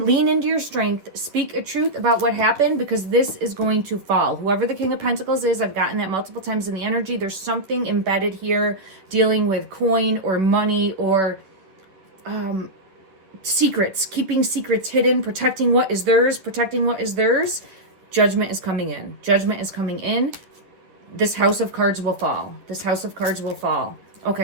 lean into your strength. Speak a truth about what happened, because this is going to fall. Whoever the King of Pentacles is, I've gotten that multiple times in the energy. There's something embedded here dealing with coin or money or secrets, keeping secrets hidden, protecting what is theirs, protecting what is theirs. Judgment is coming in. Judgment is coming in. This house of cards will fall. This house of cards will fall.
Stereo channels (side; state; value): left; late; 11 ms